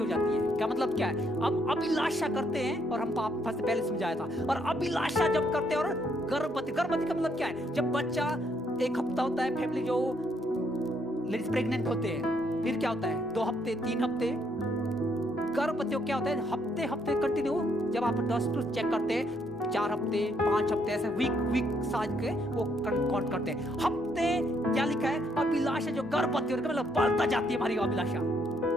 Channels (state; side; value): normal; both; correlation 0.72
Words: जाती है। क्या मतलब क्या है? हम अभिलाषा करते हैं और हम पाप से पहले समझाया था, और अभिलाषा जब करते हैं और गर्भवती का मतलब क्या है? जब बच्चा 1 हफ्ता होता है, फैमिली जो लेडीज प्रेग्नेंट होते हैं, फिर क्या होता है 2 हफ्ते 3 हफ्ते गर्भवती क्या होता है, हफ्ते हफ्ते कंटिन्यू जब आप डॉक्टर चेक करते हैं 4 हफ्ते 5 हफ्ते ऐसे वीक साज के वो काउंट करते हैं हफ्ते। क्या लिखा है, अभिलाषा जो गर्भवती होती है मतलब बढ़ता जाती है हमारी अभिलाषा।